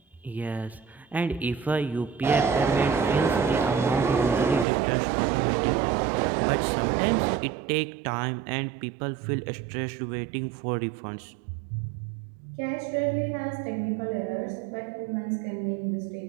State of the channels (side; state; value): left; drops out; at 4.7 s